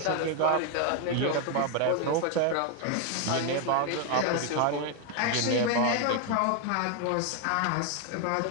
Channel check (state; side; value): different; both; correlation 0.01